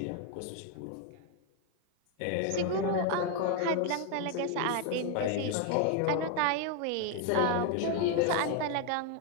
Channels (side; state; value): both; different; correlation 0.01